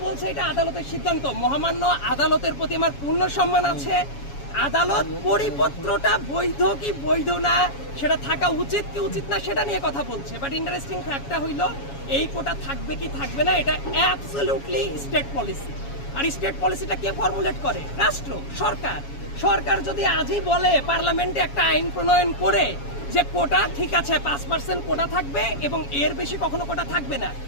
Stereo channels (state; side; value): late; right; 7.2 ms